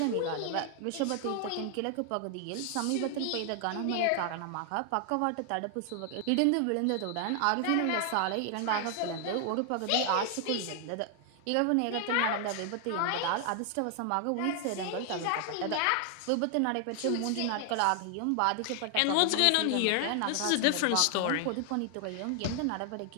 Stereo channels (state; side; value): different; both; correlation 0.00